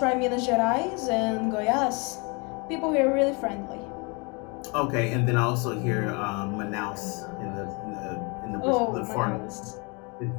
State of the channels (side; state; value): right; quieter; 30.3 dB